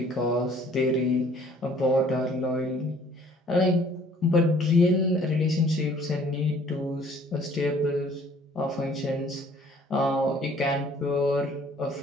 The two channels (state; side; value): normal; both; correlation 0.56